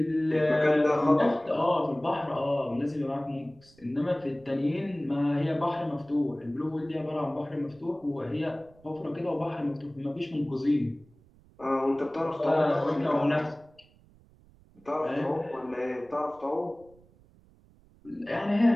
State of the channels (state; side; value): noise; right; rumble, 28 dB below the sound